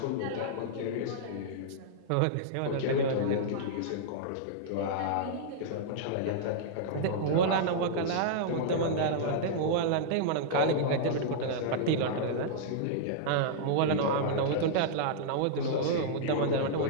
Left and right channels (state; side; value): different; both; correlation -0.02